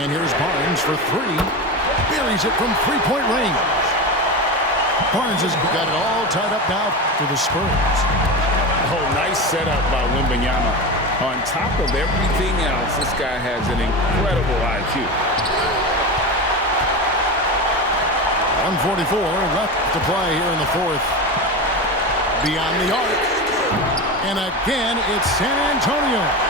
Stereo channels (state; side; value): normal; both; correlation 0.23